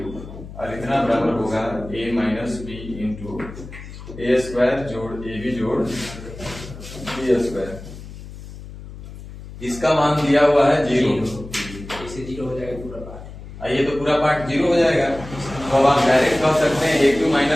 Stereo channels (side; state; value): left; noise; hum, 14 dB below the sound